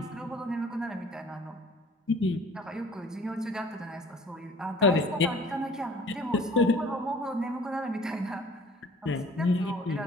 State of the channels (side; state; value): both; normal; correlation 0.50